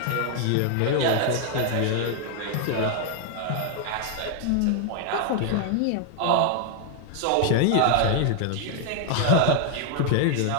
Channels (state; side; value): different; both; correlation 0.00